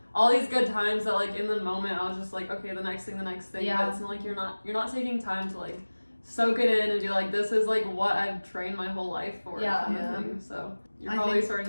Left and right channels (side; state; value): both; inverted; correlation -1.00